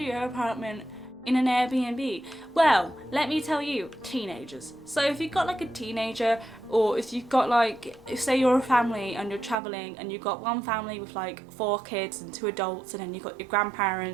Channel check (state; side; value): drops out; left; at 9.6 s